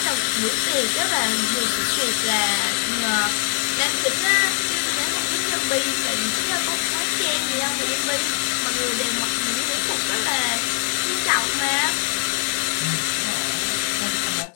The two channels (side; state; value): right; silent; digital silence